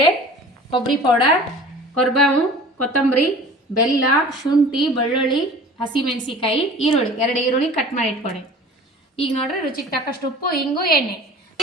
ಕೊಬ್ಬರಿ ಪೌಡರ್, ಕೊರ್ಬೇವು, ಕೊತ್ತಂಬರಿ, ಬೆಲ್ಲ, ಶುಂಠಿ, ಬೆಳ್ಳುಳ್ಳಿ, ಹಸಿಮೆಣಸಿಕಾಯಿ, ಈರುಳ್ಳಿ, 2 ಈರುಳ್ಳಿ ಕಟ್ ಮಾಡಿ ಇಟ್ಕೊಂಡೆ. ಈಗ ನೋಡ್ರಿ ರುಚಿಗೆ ತಕ್ಕಷ್ಟು ಉಪ್ಪು, ಹಿಂಗು, ಎಣ್ಣೆ.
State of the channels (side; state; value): both; normal; correlation 0.43